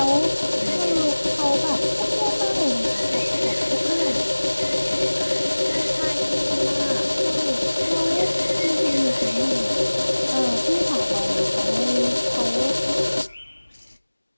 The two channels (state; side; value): inverted; both; correlation -1.00